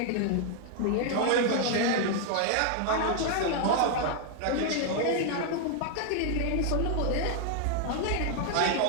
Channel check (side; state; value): both; different; correlation 0.00